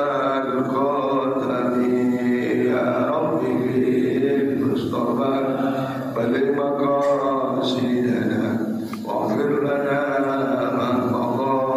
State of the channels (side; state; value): both; identical; correlation 1.00